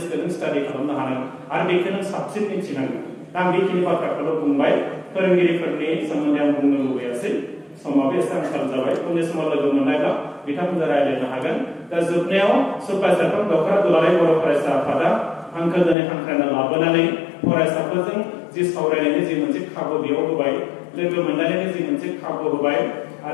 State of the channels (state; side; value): drops out; right; at 16.0 s